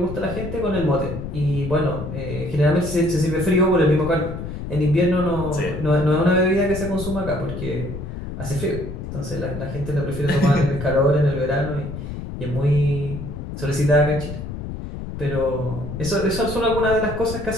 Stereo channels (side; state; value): left; noise; rumble, 8 dB below the sound